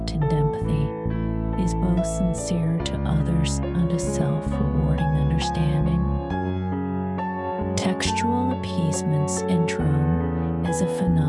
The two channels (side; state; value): both; identical; correlation 1.00